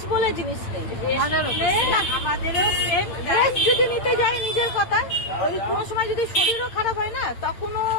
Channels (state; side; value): late; right; 8.9 ms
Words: বলে জিনিস নেই। রেস্ট যদি নিতে যাই নিজের কথা, ওই কোনো সময় যদি শরীরও খারাপ হয় না, তখনও